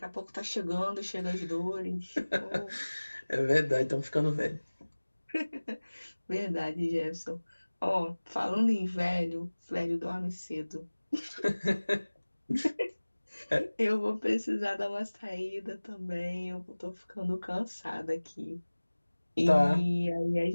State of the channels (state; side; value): inverted; both; correlation -1.00